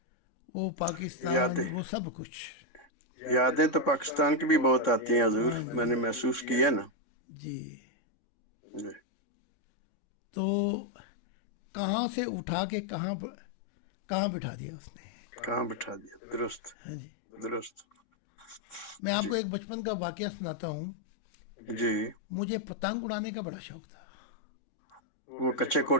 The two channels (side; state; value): right; late; 3.6 ms